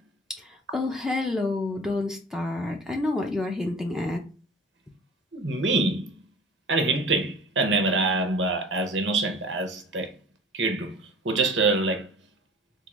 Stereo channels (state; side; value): normal; both; correlation 0.43